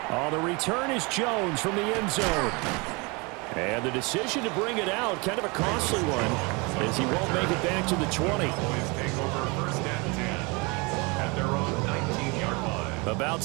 Oh, the return is Jones from the end zone. And the decision to bring it out, kind of a costly one, as he won't make it back to the 20. Cowboys take over first and 10 at their own 19-yard line. About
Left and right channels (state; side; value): quieter; left; 28.2 dB